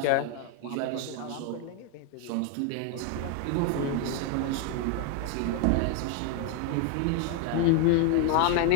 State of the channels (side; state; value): both; different; correlation 0.01